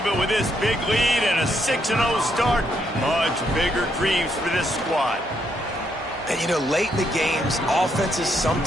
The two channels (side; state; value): right; noise; hum, 21 dB below the sound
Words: but with this big lead and a 6-0 start, much bigger dreams for this squad. And, you know, late in the games, offenses